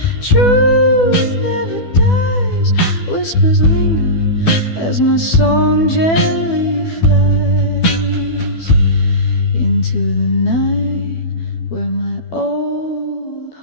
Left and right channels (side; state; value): right; late; 12 ms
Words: truth never dies. Whispers linger as my song gently flies into the night where my old